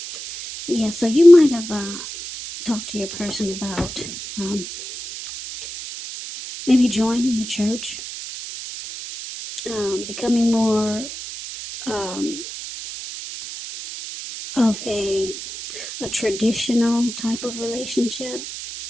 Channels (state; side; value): noise; right; hiss, 9 dB below the sound